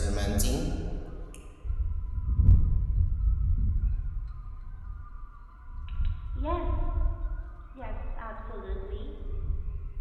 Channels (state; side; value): identical; both; correlation 1.00